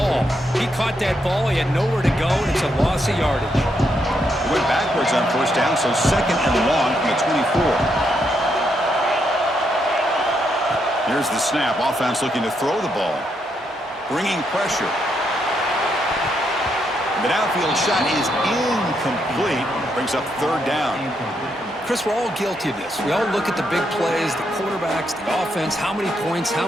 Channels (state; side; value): normal; both; correlation 0.78